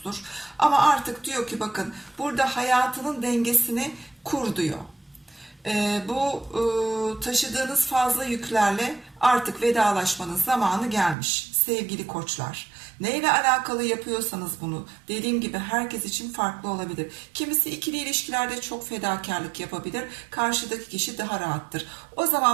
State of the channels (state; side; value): drops out; left; at 11.2 s